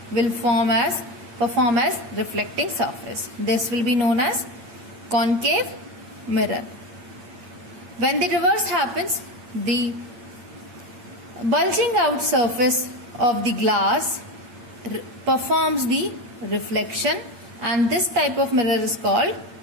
will perform as reflecting surface. This will be known as concave mirror. When the reverse happens, the bulging out surface of the glass performs the reflection, and this type of mirror is called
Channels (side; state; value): left; late; 8.8 ms